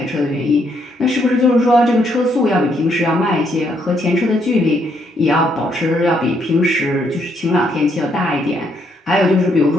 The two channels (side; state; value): both; normal; correlation 0.73